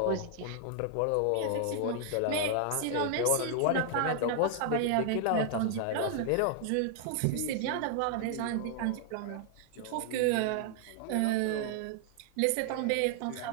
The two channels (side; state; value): both; different; correlation 0.00